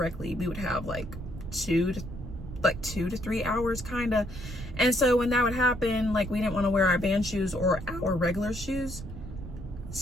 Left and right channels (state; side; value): noise; right; rumble, 11 dB below the sound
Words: we would have like 2 to 3 hours kind of. And so when that would happen, like, we didn't want to wear our band shoes or our regular shoes.